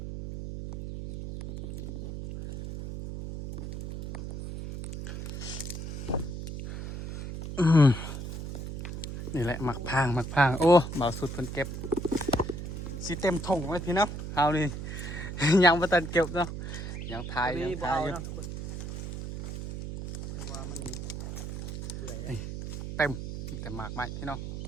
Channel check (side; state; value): right; noise; hum, 6 dB below the sound